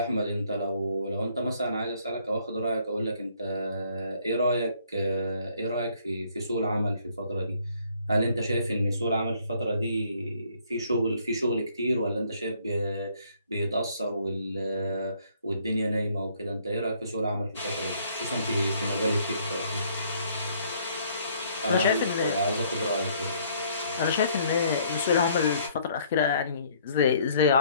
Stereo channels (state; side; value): inverted; both; correlation -0.64